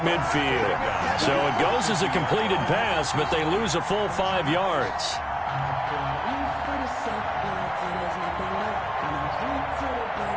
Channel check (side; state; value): both; identical; correlation 1.00